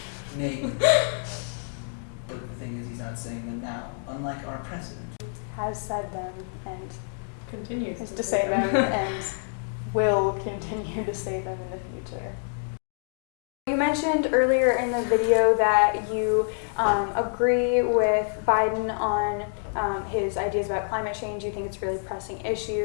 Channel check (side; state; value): right; silent; digital silence